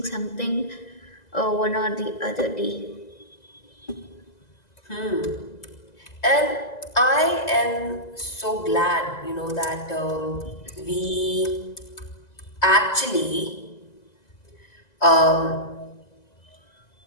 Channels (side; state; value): right; late; 2.0 ms